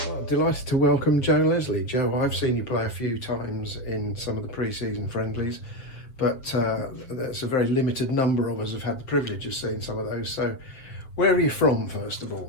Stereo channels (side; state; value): right; late; 7.3 ms